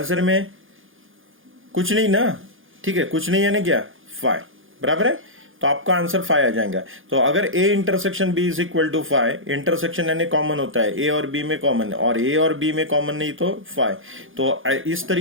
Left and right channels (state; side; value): late; left; 0.58 ms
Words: में? कुछ नहीं ना, ठीक है, कुछ नहीं यानी क्या? 5, बराबर है। तो आपका आंसर 5 आ जाएगा। तो अगर A intersection B is equal to 5, intersection यानी कॉमन होता है, ए और बी में कॉमन, और ए और बी में कॉमन नहीं तो 5। तो इस